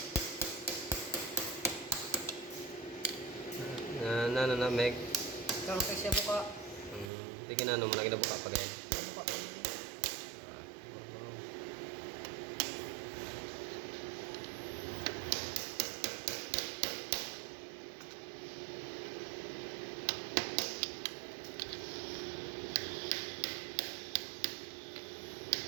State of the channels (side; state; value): left; drops out; at 7.1 s